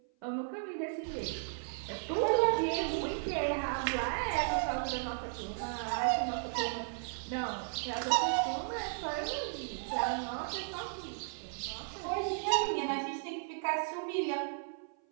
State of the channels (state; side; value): silent; left; 54 dB below the other